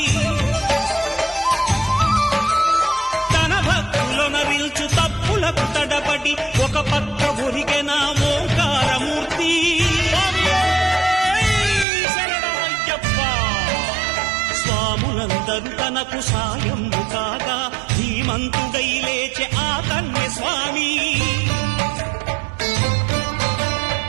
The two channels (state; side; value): drops out; left; at 11.9 s